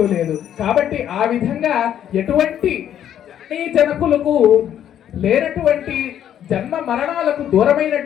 లేదు. కాబట్టి ఆ విధంగా ఎటువంటి జనకులకు లేనటువంటి జన్మ మరణాలకు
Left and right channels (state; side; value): quieter; right; 10.3 dB